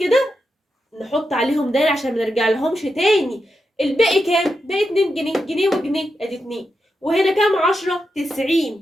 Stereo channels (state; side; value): normal; both; correlation 0.87